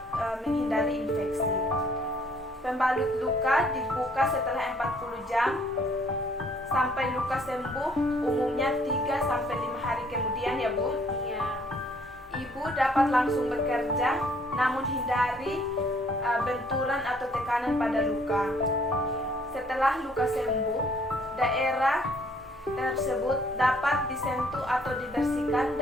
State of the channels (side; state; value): both; normal; correlation 0.62